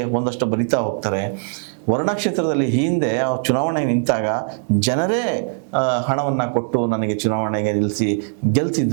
ಒಂದಷ್ಟು ಬರಿತಾ ಹೋಗ್ತಾರೆ. ವರ್ಣಾ ಕ್ಷೇತ್ರದಲ್ಲಿ ಹಿಂದೆ ಚುನಾವಣೆಗೆ ನಿಂತಾಗ ಜನರೇ ಹಣವನ್ನು ಕೊಟ್ಟು ನನಗೆ ಚುನಾವಣೆಗೆ ನಿಲ್ಲಿಸಿ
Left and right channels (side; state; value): left; silent; 61 dB below the other